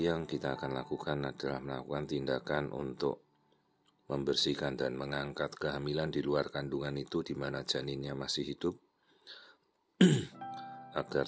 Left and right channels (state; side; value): identical; both; correlation 1.00